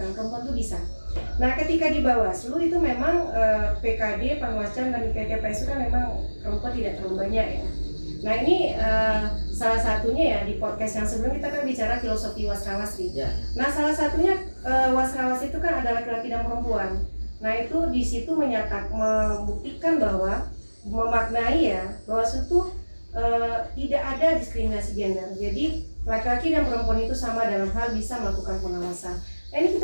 perempuan itu bisa. Nah, ketika di Bawaslu itu memang PKD, Panwascam dan PTPS itu kan memang perempuan tidak terlalu banyak ya. Nah ini salah satunya ya di podcast yang sebelum kita kan bicara filosofi wasrawasri. Ya. Nah salah satunya wasrawasri itu kan ada laki-laki dan perempuan. Nah itu di situ membuktikan bahwa memaknai ya bahwa itu tidak ada diskriminasi gender. Jadi laki-laki dan perempuan itu sama dalam hal bisa melakukan pengawasan. Nah ini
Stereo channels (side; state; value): both; inverted; correlation -1.00